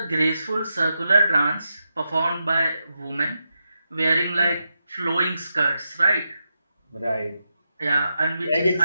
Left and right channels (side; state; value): both; inverted; correlation -0.87